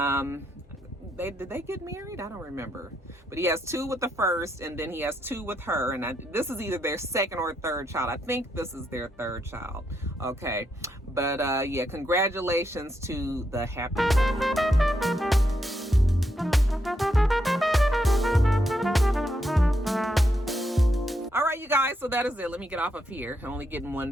Did they get married? I don't remember, but he has 2 with the first, and then he has 2 with her, and this is either their 2nd or 3rd child. I think this is their 3rd child. Okay, but yeah, congratulations to the happy. All right, you guys, so that is it. Let me get off of here. I'm only getting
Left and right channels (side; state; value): both; normal; correlation 0.80